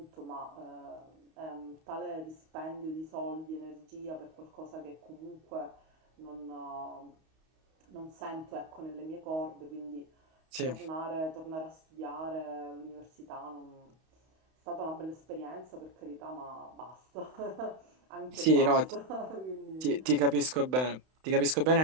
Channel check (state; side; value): late; left; 31 ms